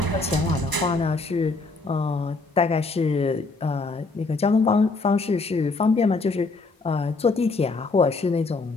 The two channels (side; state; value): right; quieter; 3.7 dB